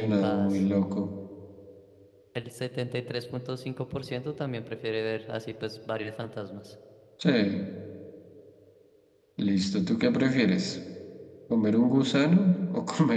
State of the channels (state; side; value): identical; both; correlation 1.00